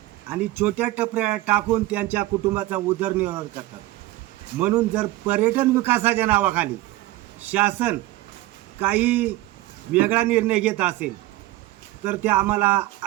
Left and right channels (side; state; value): left; quieter; 17.5 dB